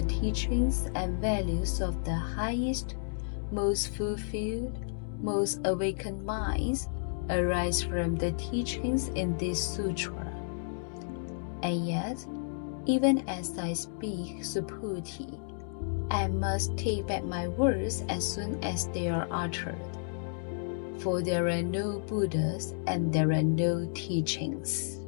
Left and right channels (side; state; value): right; silent; digital silence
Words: teachings and values of the highest, most fulfilled, most awakened minds arise from the teachings in this sutra. And yet, even as I speak, Subhuti, I must take back my words as soon as they are uttered, for there are no Buddhas and there are no teachings.